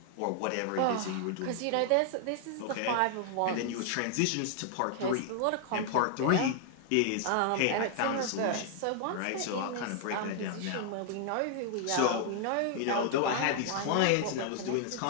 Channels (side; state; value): both; different; correlation 0.00